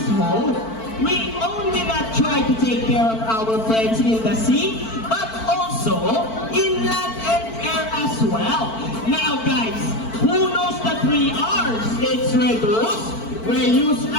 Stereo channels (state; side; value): late; right; 4.5 ms